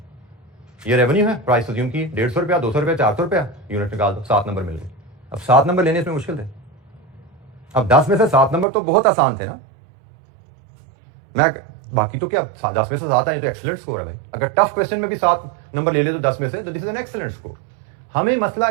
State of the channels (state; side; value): drops out; left; at 8.7 s